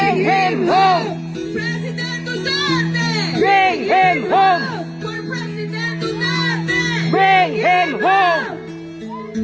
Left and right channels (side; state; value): both; identical; correlation 1.00